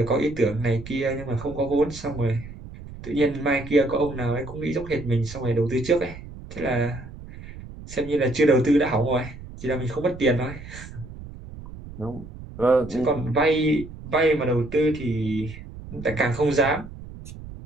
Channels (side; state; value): right; noise; rumble, 14 dB below the sound